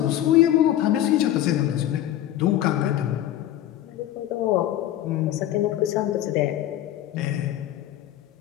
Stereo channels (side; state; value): right; quieter; 12.7 dB